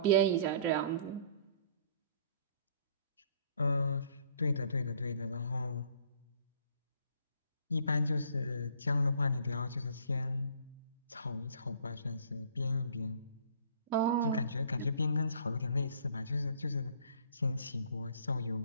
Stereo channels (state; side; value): inverted; both; correlation -0.56